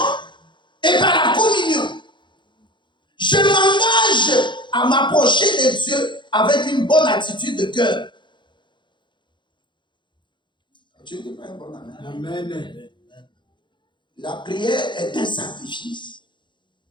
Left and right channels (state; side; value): late; right; 0.23 ms